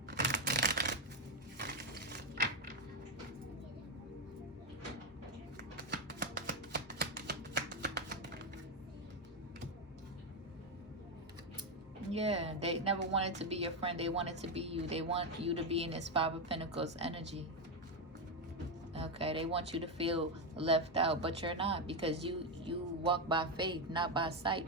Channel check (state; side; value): normal; both; correlation 0.07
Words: Yeah, they never wanted to be your friend. They wanted to be you. They want you to be in this Five of Pentacles energy. Okay, they want you to feel left out, but you're not, because you walk by faith, not by sight,